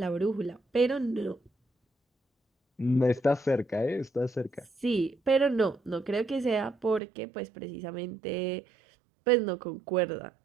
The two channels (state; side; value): drops out; left; at 7.0 s